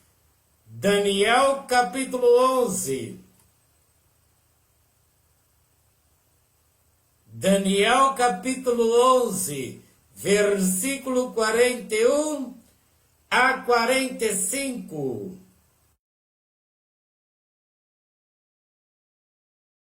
Daniel capítulo 11. Daniel capítulo 11, versículo 41 a 45.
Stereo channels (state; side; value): identical; both; correlation 1.00